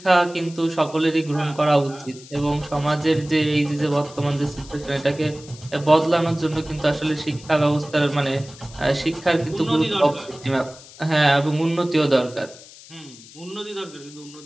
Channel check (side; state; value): left; noise; hiss, 20 dB below the sound